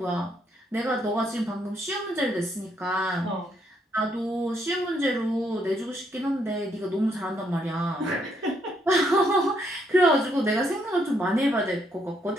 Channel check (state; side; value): normal; both; correlation 0.73